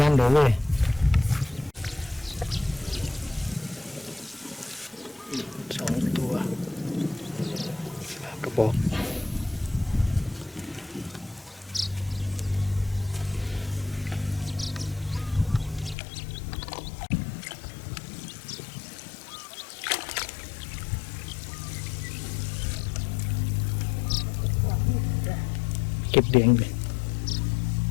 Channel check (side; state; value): right; drops out; at 16.0 s